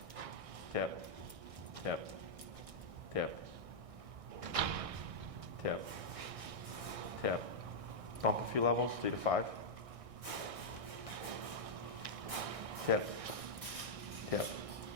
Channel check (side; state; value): left; late; 1.6 ms